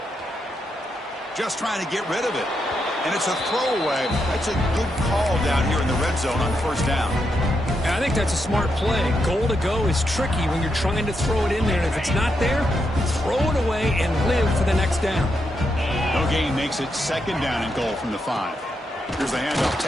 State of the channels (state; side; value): normal; both; correlation 0.82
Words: Just trying to get rid of it. And it's a throwaway. That's a good call down here in the red zone on first down. And I think that's a smart play. Goal to go is tricky when you're trying to throw it in there. And if it's not there, throw it away and live for the next down. No gain makes it 2nd down and goal from the 5. Here's the handoff,